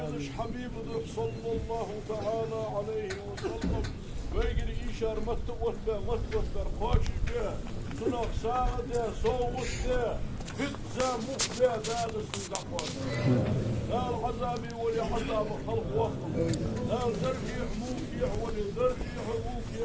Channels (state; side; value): identical; both; correlation 1.00